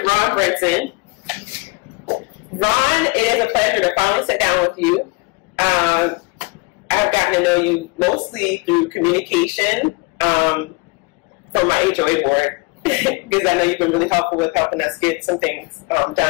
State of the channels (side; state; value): right; quieter; 27.4 dB